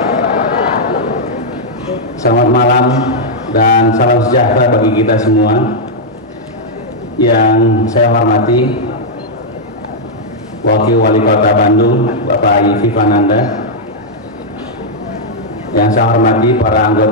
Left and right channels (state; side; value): normal; both; correlation -0.05